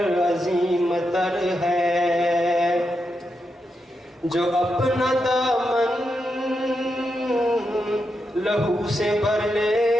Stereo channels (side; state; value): both; normal; correlation 0.85